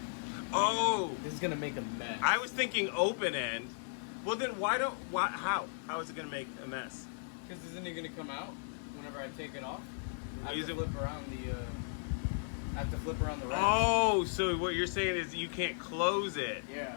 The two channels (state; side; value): silent; right; 54 dB below the other